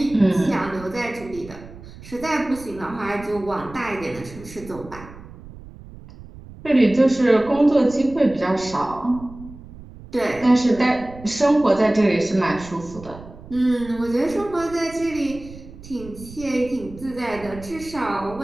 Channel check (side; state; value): right; noise; rumble, 17 dB below the sound